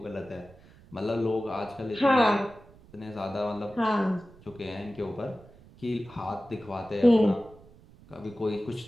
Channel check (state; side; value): noise; right; rumble, 24 dB below the sound